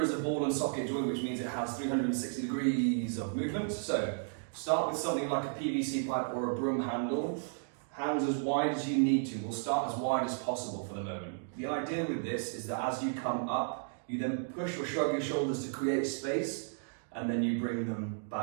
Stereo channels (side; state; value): left; silent; digital silence